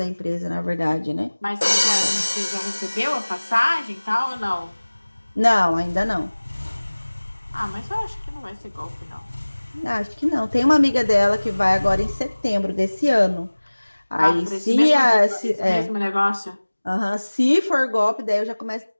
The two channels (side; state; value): both; inverted; correlation -1.00